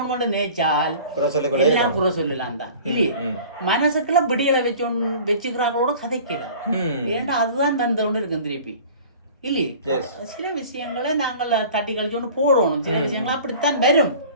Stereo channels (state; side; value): inverted; both; correlation -0.44